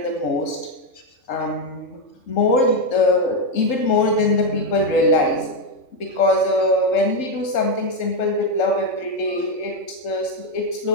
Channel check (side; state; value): right; late; 3.8 ms